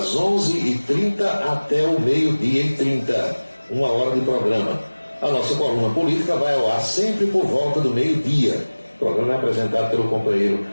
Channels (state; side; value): inverted; both; correlation -1.00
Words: 11h30 até o 12h30, 1 hora de programa. A nossa coluna política vai ao ar sempre por volta do meio-dia. O programa é apresentado pelo companheiro